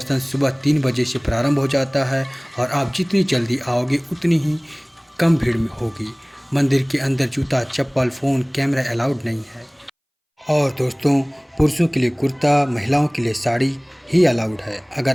सुबह 3 बजे से प्रारंभ हो जाता है और आप जितनी जल्दी आओगे उतनी ही कम भीड़ में होगी। मंदिर के अंदर जूता, चप्पल, फ़ोन, कैमरा अलाउड नहीं है। और दोस्तों, पुरुषों के लिए कुर्ता, महिलाओं के लिए साड़ी ही अलाउड है।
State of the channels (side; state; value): both; identical; correlation 1.00